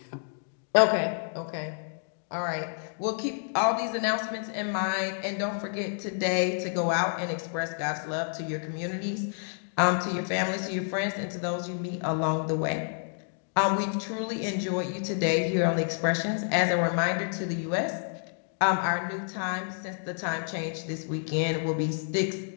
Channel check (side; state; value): right; silent; digital silence